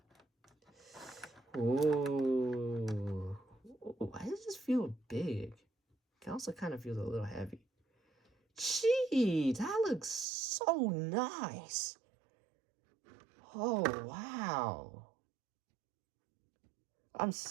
Ooh. Why does this feel big? It also kind of feels a little heavy. Gee, that looks so nice. Oh, wow. I'm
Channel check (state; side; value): drops out; left; at 10.2 s